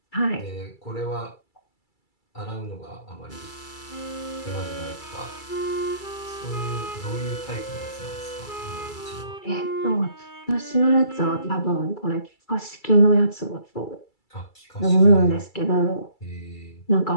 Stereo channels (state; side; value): late; right; 2.3 ms